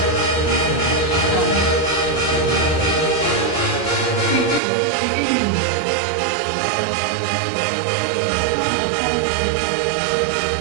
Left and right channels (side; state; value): left; drops out; at 4.6 s